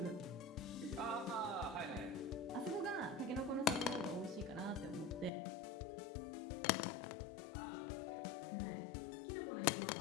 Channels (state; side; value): drops out; right; at 5.3 s